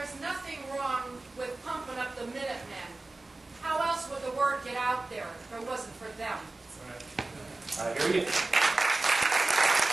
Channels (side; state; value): left; quieter; 3.1 dB